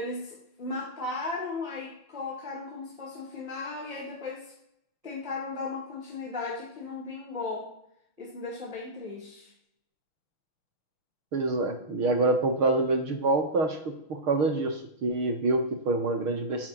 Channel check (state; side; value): late; left; 6.5 ms